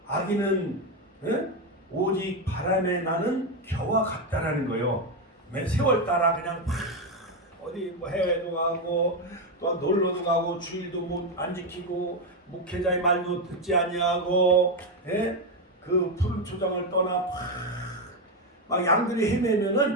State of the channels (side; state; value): both; normal; correlation 0.09